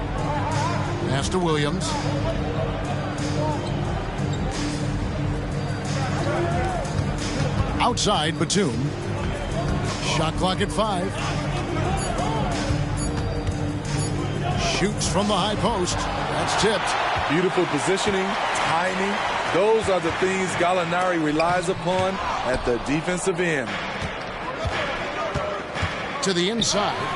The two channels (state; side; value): identical; both; correlation 1.00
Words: Pass to Williams. Outside, Batum. Shot clock at 5. Shoots from the high post. That's tipped. Beautiful positioning, timing. Those are the things Gallinari relies upon at the defensive end. To the inside.